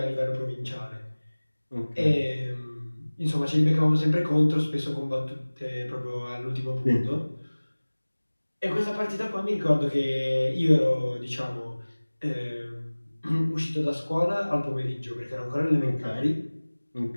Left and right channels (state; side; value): inverted; both; correlation -1.00